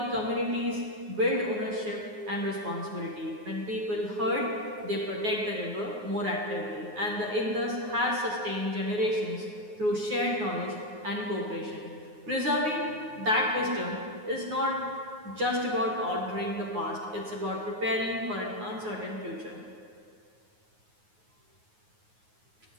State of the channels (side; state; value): left; late; 9.5 ms